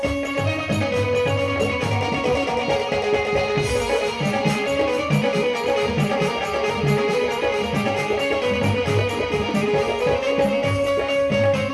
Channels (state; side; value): identical; both; correlation 1.00